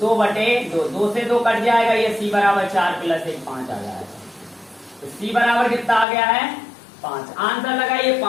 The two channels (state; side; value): drops out; right; at 6.1 s